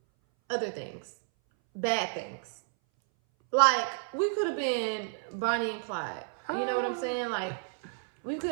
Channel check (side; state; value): left; silent; 57 dB below the other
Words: other things. Bad things. Like, we could have been Bonnie and Clyde. You know what I'm saying? Like, we